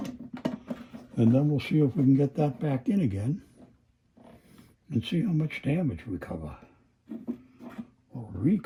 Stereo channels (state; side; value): identical; both; correlation 1.00